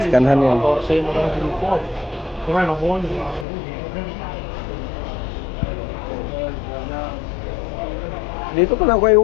skanhan yan. Dito pala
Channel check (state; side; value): drops out; right; at 3.5 s